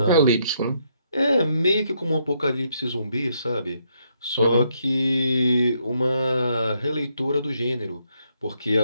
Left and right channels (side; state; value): both; inverted; correlation -0.75